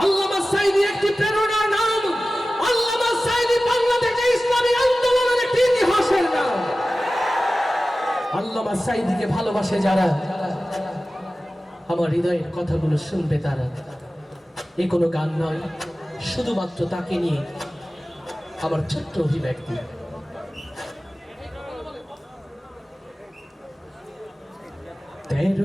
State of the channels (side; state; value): both; normal; correlation 0.96